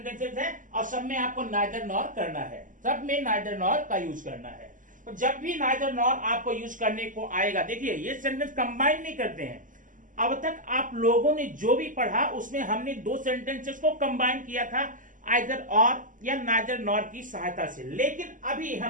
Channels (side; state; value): left; late; 0.38 ms